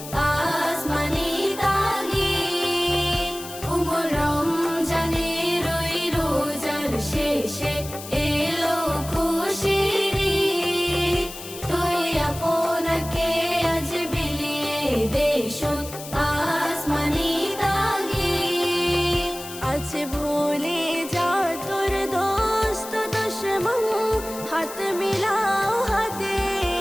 আসমানি তাগিদ উমর রমজানের ওই রোজার শেষে এলো খুশির ঈদ তুই আপনাকে আজ বিলিয়ে দেশত আসমানি তাগিদ আজ ভুলে যা তোর দোস্ত দুশ্মন হাত মিলাও হাতে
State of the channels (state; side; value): noise; left; hiss, 13 dB below the sound